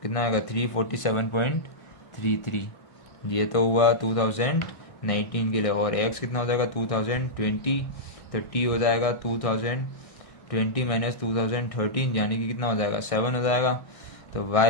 कितना आएगा 347.33। ये तो हुआ 2019 के लिए। और एक्स कितना हो जाएगा 2020, तो टी हो जाएगा 2020 माइनस 2013 यानी कि कितना हो जाएगा 7 हो जाएगा। तो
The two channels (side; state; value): right; late; 1.6 ms